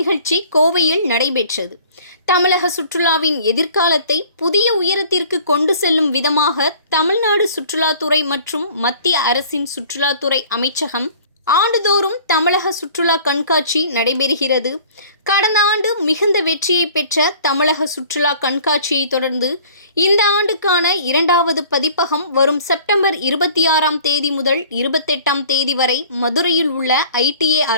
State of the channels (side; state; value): both; inverted; correlation -0.49